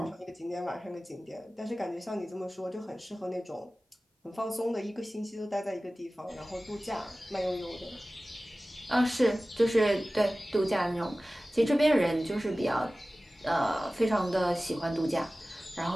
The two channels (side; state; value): both; normal; correlation 0.97